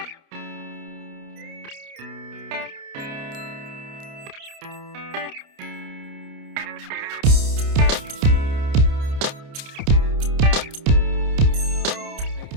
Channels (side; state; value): left; late; 29 ms